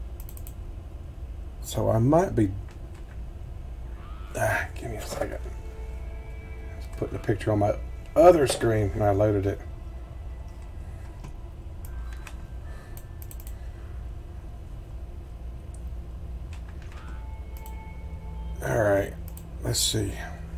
So I might be... give me a second. Just putting the picture on my other screen and I loaded it. Alright, let's see.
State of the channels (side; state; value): both; identical; correlation 1.00